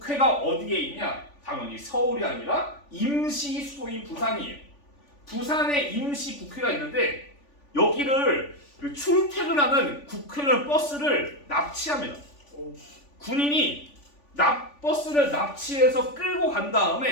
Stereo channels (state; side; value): late; right; 3.5 ms